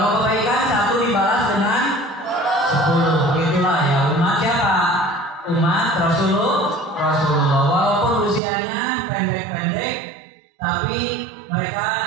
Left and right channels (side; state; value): left; drops out; at 8.4 s